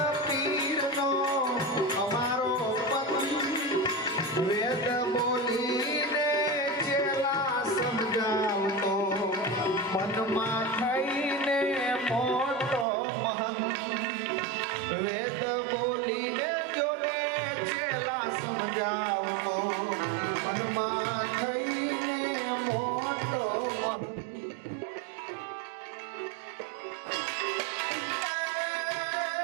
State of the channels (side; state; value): left; drops out; at 12.9 s